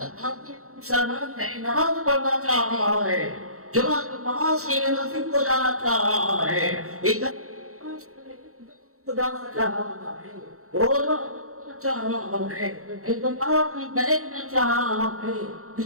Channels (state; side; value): late; left; 0.64 ms